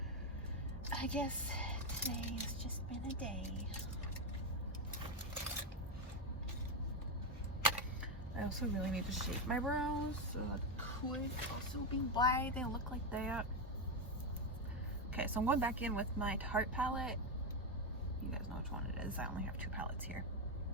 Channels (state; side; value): normal; both; correlation 0.07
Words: I guess today has just been a day. I also really need to shape my brows, so that could also be why they look like that. Okay, so I'm going back in with my Tarte palette. You guys know which one it is. I only have 2 palettes here.